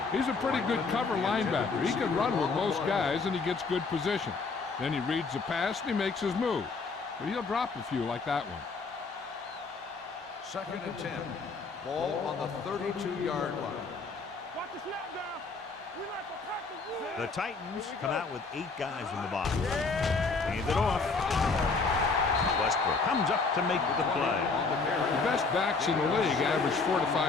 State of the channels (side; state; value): right; quieter; 4.3 dB